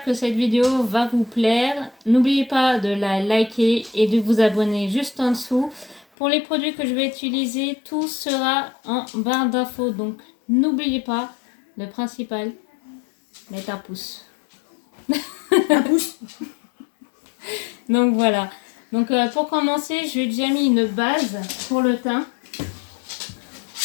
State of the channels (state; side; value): drops out; right; at 6.1 s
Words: que cette vidéo va vous plaire. N'oubliez pas de la liker et de vous abonner juste en dessous. Pour les produits que je vais utiliser, tout sera en barre d'infos. Donc n'oubliez pas, le principal, mettre un pouce. Un pouce. Donc voilà. Donc pour commencer, j'ai déjà mis une base pour le teint.